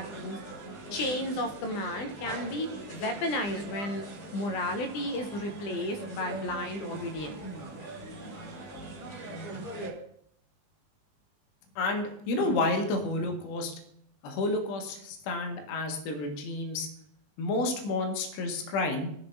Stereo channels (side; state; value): right; late; 20 ms